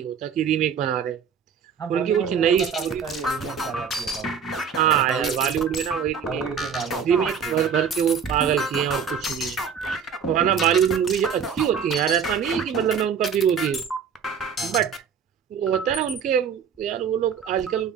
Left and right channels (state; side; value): quieter; left; 7.0 dB